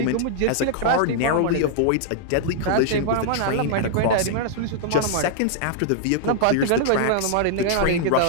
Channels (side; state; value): both; different; correlation -0.01